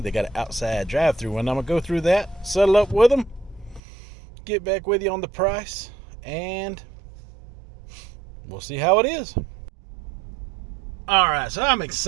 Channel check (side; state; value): left; drops out; at 3.8 s